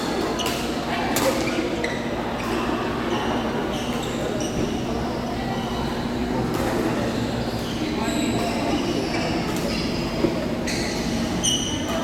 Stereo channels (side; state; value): both; identical; correlation 1.00